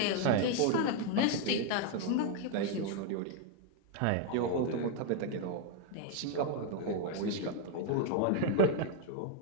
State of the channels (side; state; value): both; different; correlation 0.00